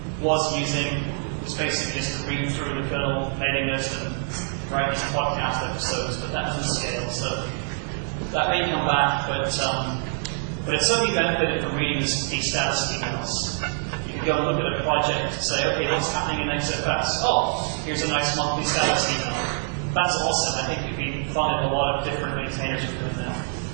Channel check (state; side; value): silent; left; 62 dB below the other